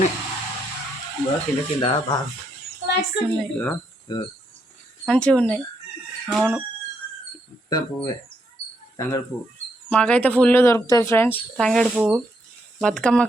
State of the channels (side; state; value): both; normal; correlation 0.77